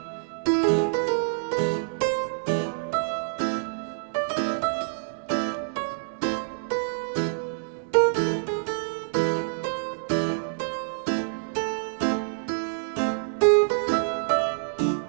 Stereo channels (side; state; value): left; silent; digital silence